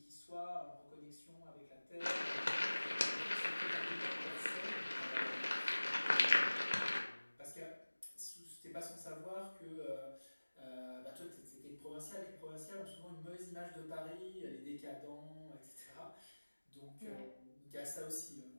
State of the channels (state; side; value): inverted; both; correlation -1.00